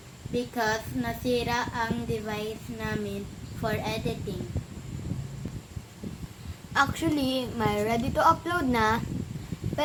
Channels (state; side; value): identical; both; correlation 1.00